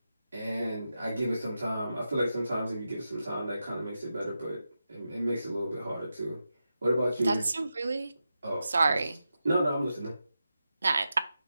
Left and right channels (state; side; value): inverted; both; correlation -0.90